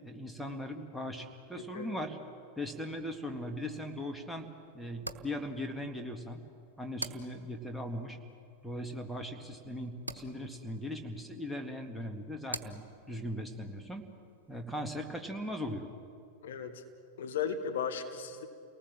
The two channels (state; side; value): normal; both; correlation 0.34